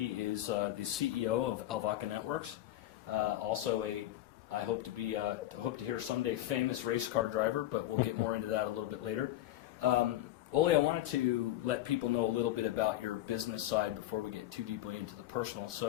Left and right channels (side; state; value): right; quieter; 14.1 dB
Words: is the CEO of ALVAKA Networks. I hope to hear someday famous race car driver, but we'll get more into that a little bit later. Oli, I wanted to let people know a little bit about your business side before we get too deeply into the personal.